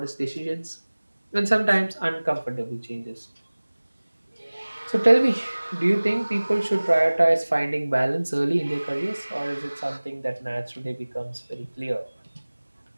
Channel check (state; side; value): inverted; both; correlation -1.00